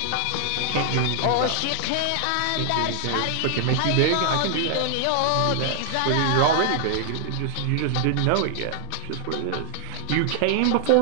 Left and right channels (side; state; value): both; different; correlation 0.00